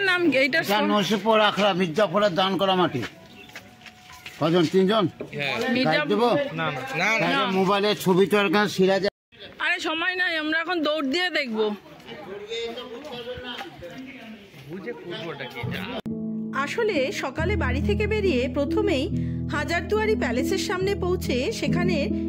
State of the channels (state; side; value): identical; both; correlation 1.00